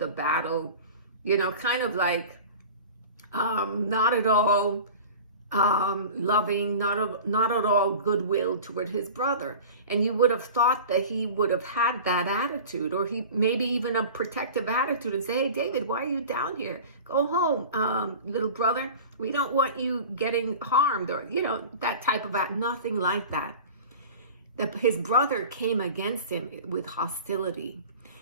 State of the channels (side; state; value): both; inverted; correlation -0.37